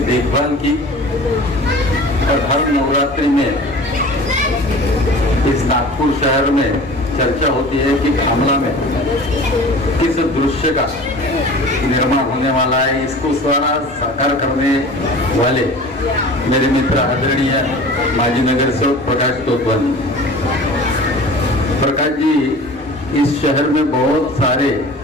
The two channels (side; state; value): both; normal; correlation 0.41